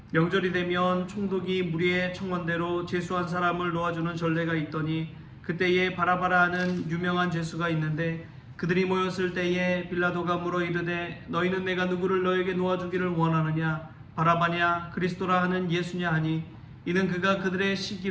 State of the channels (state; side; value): identical; both; correlation 1.00